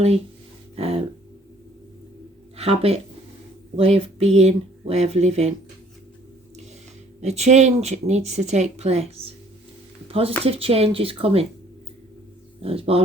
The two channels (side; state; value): both; normal; correlation 0.58